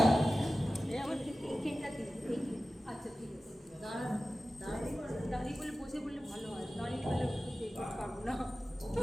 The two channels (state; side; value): normal; both; correlation 0.95